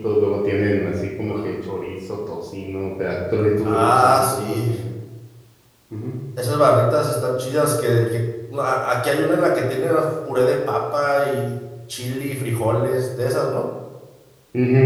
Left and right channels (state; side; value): identical; both; correlation 1.00